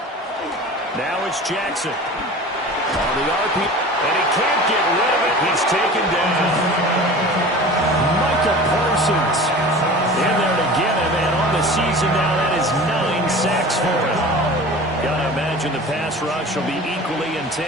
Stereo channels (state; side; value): normal; both; correlation 0.38